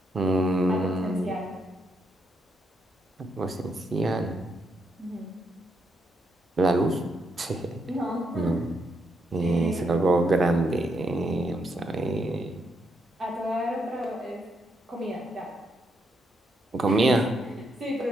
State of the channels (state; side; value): normal; both; correlation 0.78